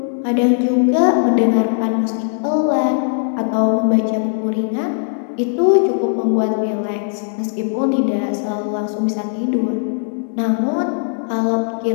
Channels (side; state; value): right; silent; digital silence